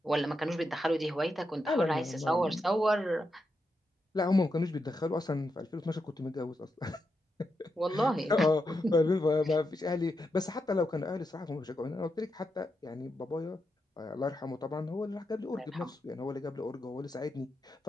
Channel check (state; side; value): normal; both; correlation 0.85